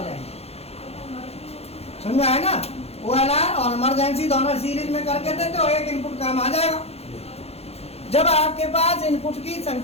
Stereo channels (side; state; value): right; late; 0.30 ms